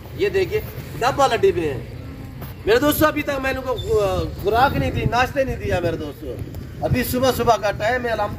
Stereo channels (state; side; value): identical; both; correlation 1.00